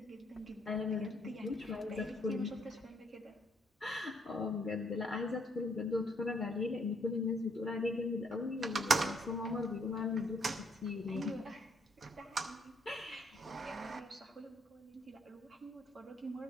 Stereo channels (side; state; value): both; normal; correlation 0.69